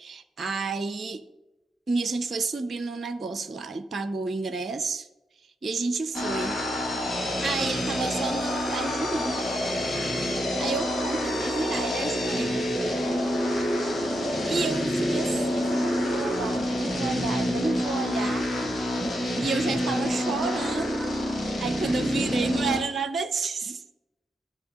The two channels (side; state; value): both; normal; correlation 0.83